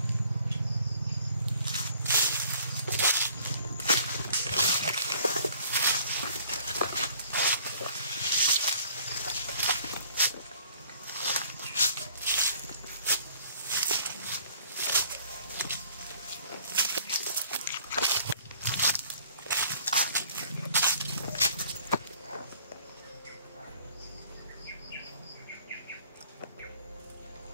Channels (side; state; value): both; inverted; correlation -0.56